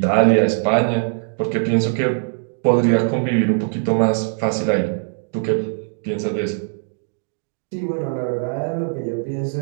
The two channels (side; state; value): left; silent; digital silence